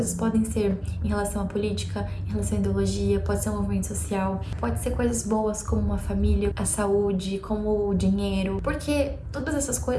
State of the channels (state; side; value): identical; both; correlation 1.00